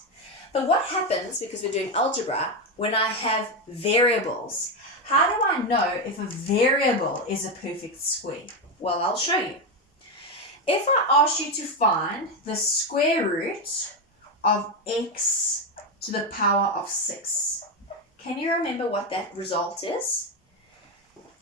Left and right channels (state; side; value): normal; both; correlation 0.10